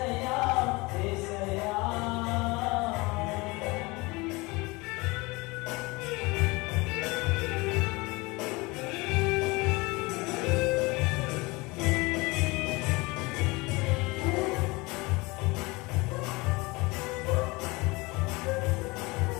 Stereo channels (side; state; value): right; quieter; 24.2 dB